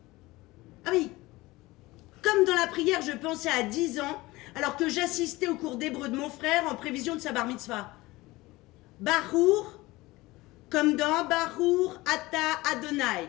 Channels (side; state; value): right; quieter; 20.3 dB